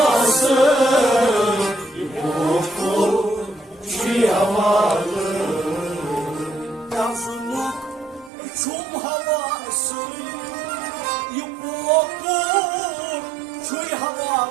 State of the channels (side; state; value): left; drops out; at 8.3 s